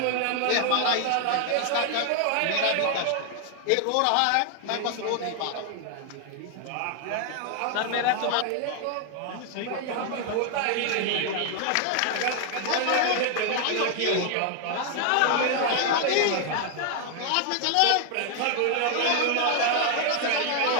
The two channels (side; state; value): both; different; correlation 0.00